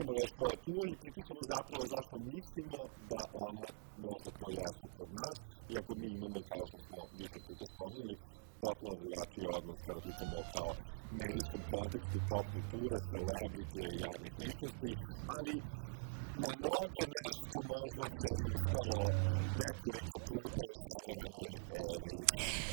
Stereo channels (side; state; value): left; silent; digital silence